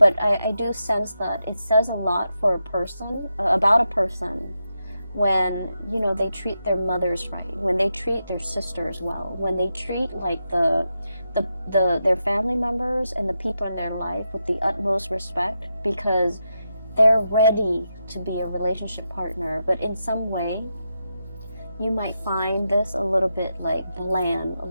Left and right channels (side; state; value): both; inverted; correlation -0.86